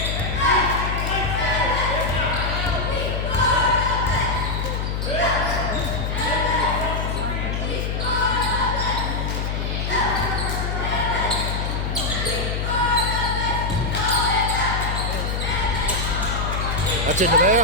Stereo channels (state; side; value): noise; left; hum, 1 dB below the sound